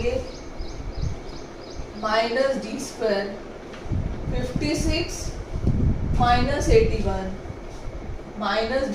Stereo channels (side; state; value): both; identical; correlation 1.00